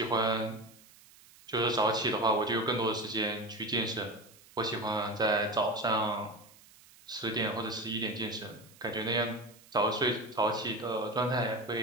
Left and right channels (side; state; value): right; noise; hiss, 24 dB below the sound